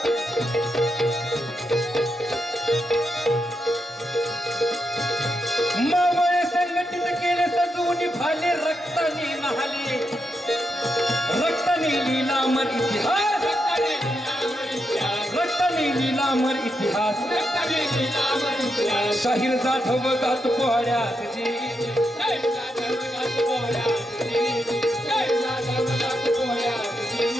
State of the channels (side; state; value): both; normal; correlation 0.84